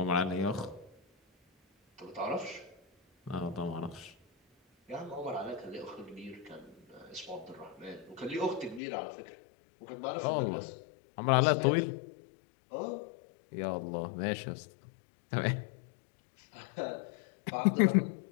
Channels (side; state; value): right; drops out; at 8.8 s